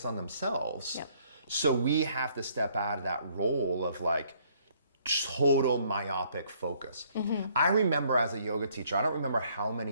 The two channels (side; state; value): both; inverted; correlation -0.65